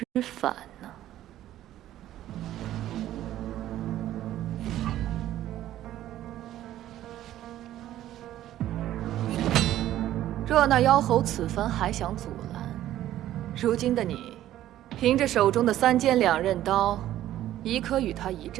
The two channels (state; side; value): quieter; left; 13.2 dB